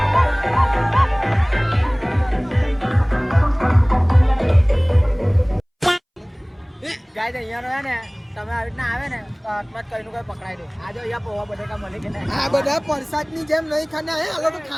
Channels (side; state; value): both; identical; correlation 1.00